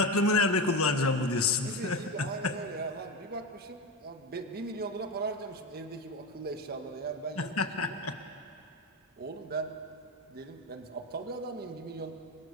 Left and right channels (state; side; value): normal; both; correlation 0.18